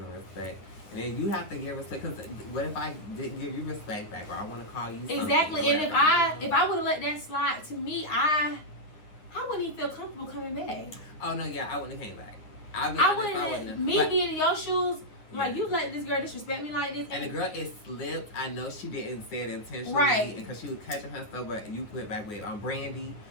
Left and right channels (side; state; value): right; late; 9.4 ms